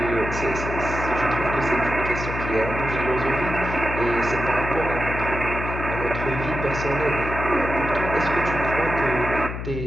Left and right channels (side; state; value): left; noise; hum, 6 dB below the sound